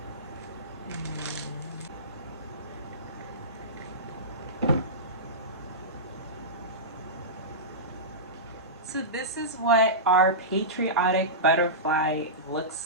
So this is what our patriotic butterfly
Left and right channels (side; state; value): both; normal; correlation -0.18